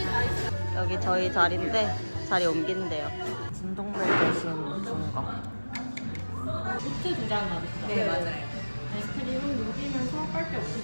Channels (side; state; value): both; inverted; correlation -1.00